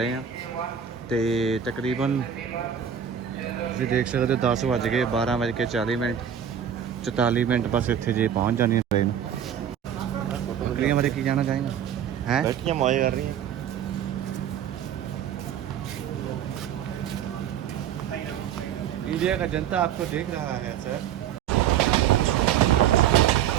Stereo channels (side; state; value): left; quieter; 9.1 dB